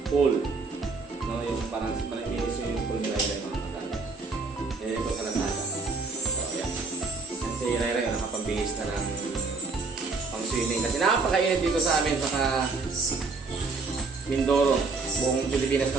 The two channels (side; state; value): left; quieter; 4.1 dB